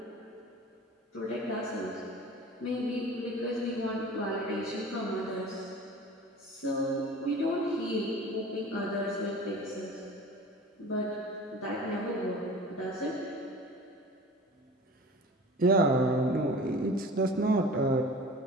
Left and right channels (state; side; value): normal; both; correlation 0.40